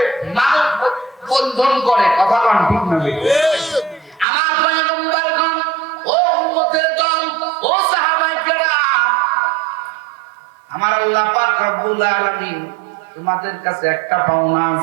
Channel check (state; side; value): drops out; left; at 4.2 s